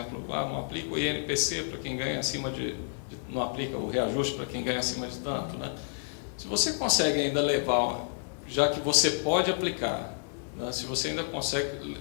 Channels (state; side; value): silent; right; digital silence